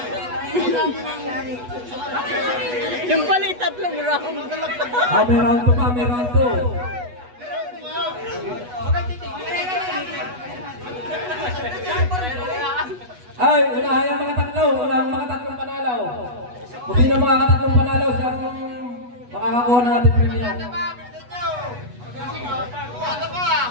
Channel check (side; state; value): left; late; 8.2 ms